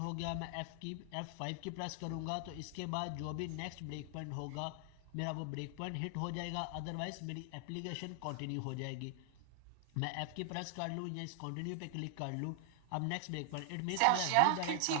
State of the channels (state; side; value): different; both; correlation 0.00